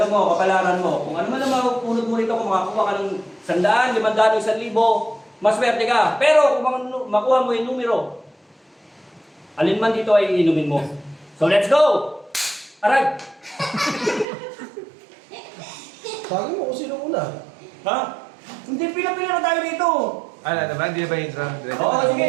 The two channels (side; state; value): left; drops out; at 14.2 s